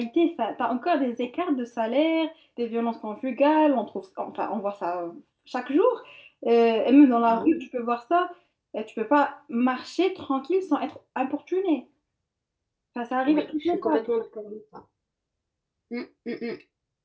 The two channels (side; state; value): both; identical; correlation 1.00